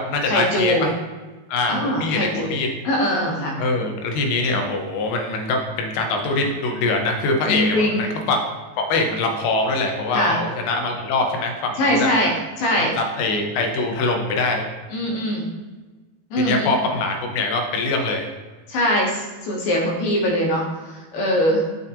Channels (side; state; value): right; late; 19 ms